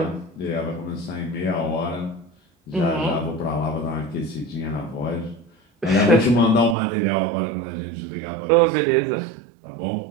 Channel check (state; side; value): drops out; left; at 6.8 s